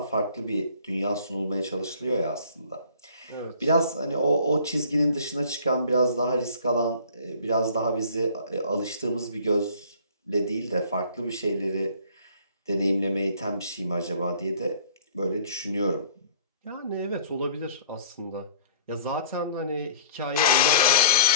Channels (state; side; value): inverted; both; correlation -0.51